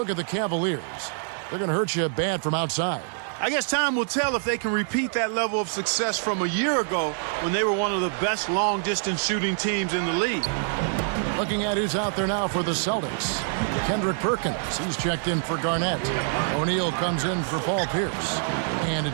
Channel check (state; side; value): silent; left; 61 dB below the other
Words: at the Cavaliers. They're going to hurt you bad from outside. I guess time will tell if they can repeat that level of success from a year ago when they were one of the best long-distance shooting teams in the league. Looking at who's out there now for the Celtics. Kendrick Perkins, he's checked in for Garnett. O'Neal comes in for Paul Pierce. And